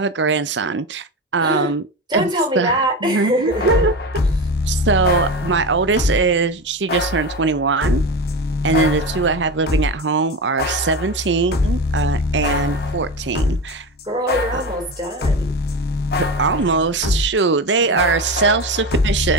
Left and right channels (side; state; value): both; normal; correlation 0.22